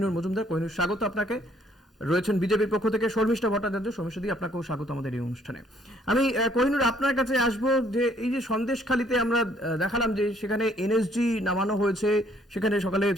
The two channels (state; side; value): normal; both; correlation 0.64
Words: মজুমদার। কোহিনুর, স্বাগত আপনাকে। রয়েছেন বিজেপির পক্ষ থেকে শর্মিষ্ঠা ভট্টাচার্য। শর্মিষ্ঠাদি, আপনাকেও স্বাগত আমাদের এই অনুষ্ঠানে। আমি কোহিনুর আপনার কাছে আসবো, যে এই যে সন্দেশখালীতে আমরা দেখালাম যে সেখানে এনএসজি নামানো হয়েছে, সেখানে সকালে